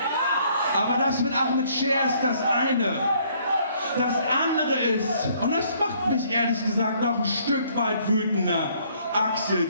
Aber das mit Ahmed Scher ist das eine. Das andere ist, und das macht mich ehrlich gesagt noch ein Stück weit wütender,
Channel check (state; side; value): inverted; both; correlation -0.63